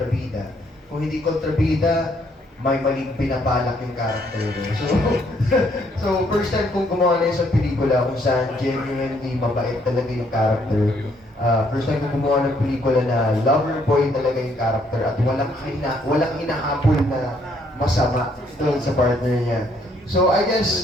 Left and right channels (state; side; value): normal; both; correlation 0.69